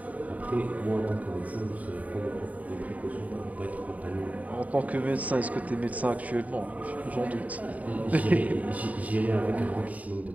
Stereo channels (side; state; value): left; late; 0.071 ms